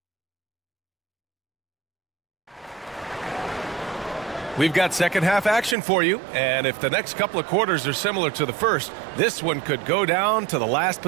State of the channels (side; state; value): left; drops out; at 5.8 s